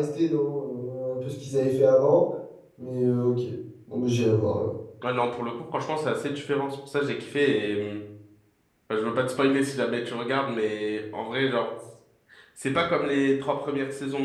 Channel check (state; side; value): identical; both; correlation 1.00